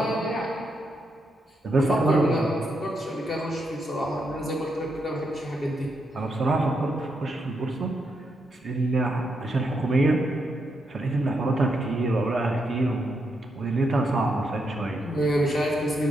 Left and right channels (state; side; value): normal; both; correlation 0.81